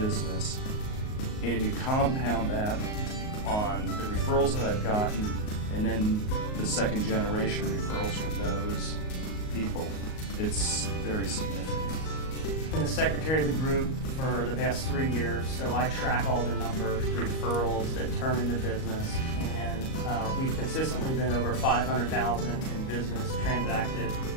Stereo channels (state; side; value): late; right; 38 ms